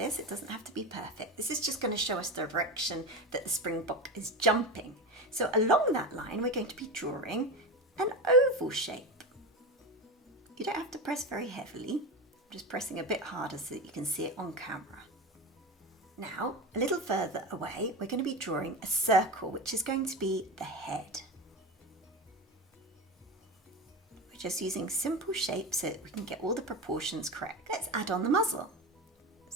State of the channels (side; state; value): both; normal; correlation 0.22